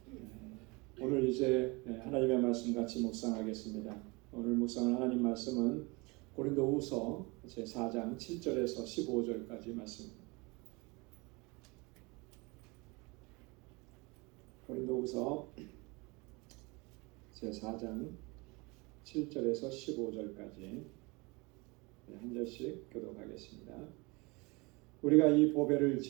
오늘 이제 하나님의 말씀 같이 묵상하겠습니다. 오늘 묵상할 하나님 말씀은 고린도후서 제4장 7절에서 15절까지 말씀입니다. 고린도후서 제4장 7절에서 15절까지 한 절씩 교독하겠습니다. 우리가 이 보배를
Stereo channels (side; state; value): left; quieter; 26.5 dB